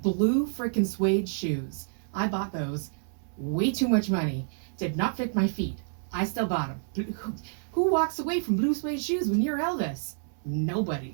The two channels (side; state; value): left; silent; digital silence